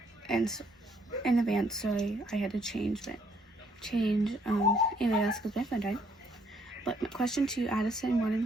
and in advance, sorry, I had to change alias because my phone died. But question 2, Addison wanted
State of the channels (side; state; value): both; normal; correlation 0.67